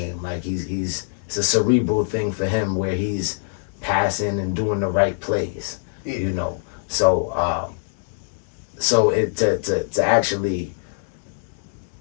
Like it's a cerebral thing for him where he's passing and doing the right plays. So it to actually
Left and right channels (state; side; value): silent; right; digital silence